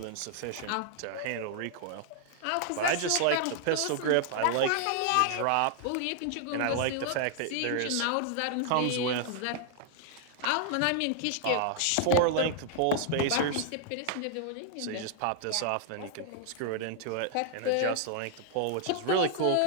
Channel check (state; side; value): different; both; correlation 0.00